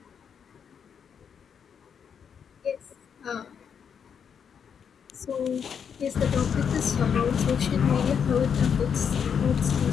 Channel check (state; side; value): quieter; right; 7.3 dB